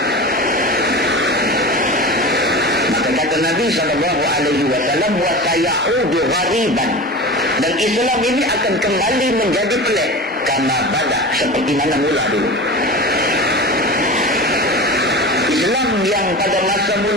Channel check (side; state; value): both; normal; correlation 0.31